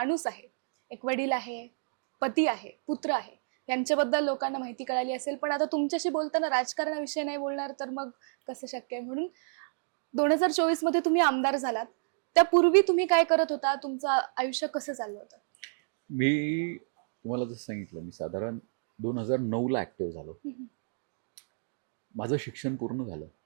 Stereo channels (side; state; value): left; silent; digital silence